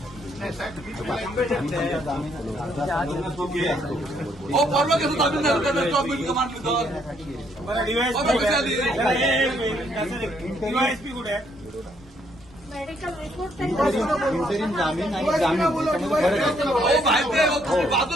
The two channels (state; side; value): normal; both; correlation 0.70